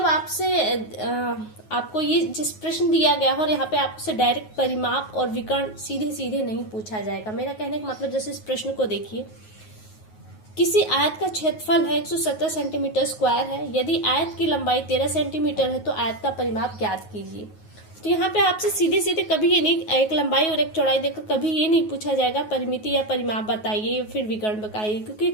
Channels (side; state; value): right; late; 9.4 ms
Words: आपसे आपको ये जिस प्रश्न दिया गया है और यहाँ पे आपसे डायरेक्ट परिमाप और विकर्ण सीधे सीधे नहीं पूछा जाएगा। मेरा कहने का मतलब, जैसे इस प्रश्न को देखिए, किसी आयत का क्षेत्रफल है 117 सेंटीमीटर स्क्वायर है। यदि आयत की लंबाई 13 सेंटीमीटर है तो आयत का परिमाप ज्ञात कीजिए। तो यहाँ पे आपसे सीधे सीधे कभी ये नहीं, एक लंबाई और एक चौड़ाई देकर कभी ये नहीं पूछा जाएगा परिमिति या परिमाप बताइए या फिर विकर्ण बताइए, क्योंकि